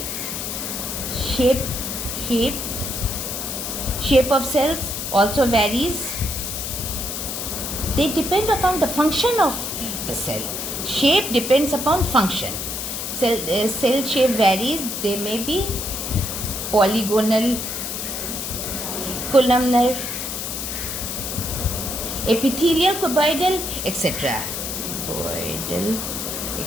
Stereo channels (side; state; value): left; noise; hiss, 4 dB below the sound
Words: Shape of cells also varies. They depend upon the function of the cell. Shape depends upon function. Cell shape varies. They may be polygonal, columnar, epithelial, cuboidal, etc.